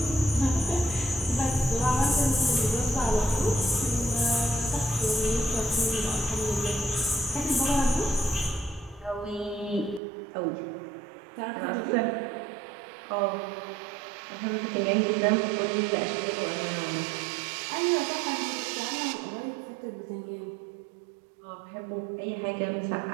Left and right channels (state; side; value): drops out; left; at 10.0 s